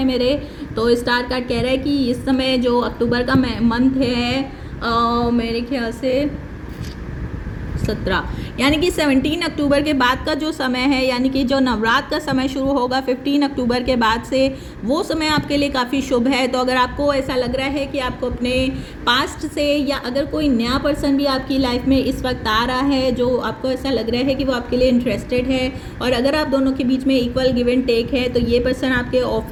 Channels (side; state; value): both; identical; correlation 1.00